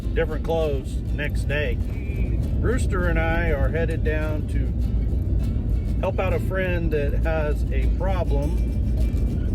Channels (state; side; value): identical; both; correlation 1.00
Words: different clothes next day. Rooster and I are headed down to help out a friend that has a